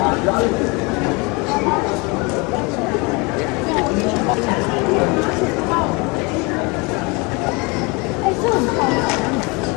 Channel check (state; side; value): quieter; right; 28.1 dB